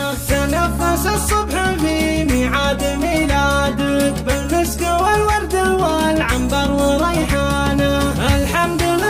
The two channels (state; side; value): identical; both; correlation 1.00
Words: تنفس الصبح في ميعاد ميلادك بالمسك والورد والعنبر وريحانه. الحمد